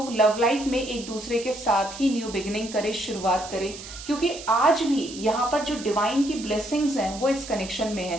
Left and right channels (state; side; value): noise; right; hiss, 13 dB below the sound